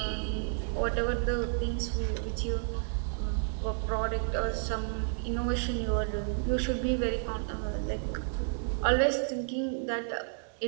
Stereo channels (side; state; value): left; silent; 57 dB below the other